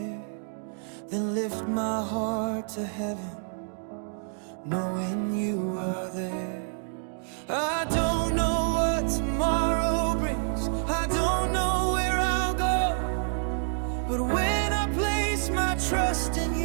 then lift my heart to heaven, knowing you are there. I don't know what tomorrow brings, I don't know where I'll go, but when I place my trust in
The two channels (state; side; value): silent; left; digital silence